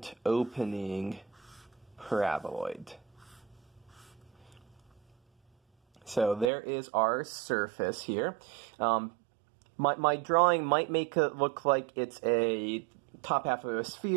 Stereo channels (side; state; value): left; drops out; at 6.5 s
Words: opening paraboloid. So there is our surface here. My drawing might make it look like it's a top half of a